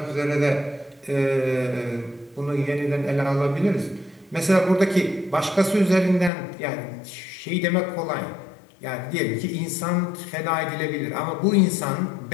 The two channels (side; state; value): right; drops out; at 6.3 s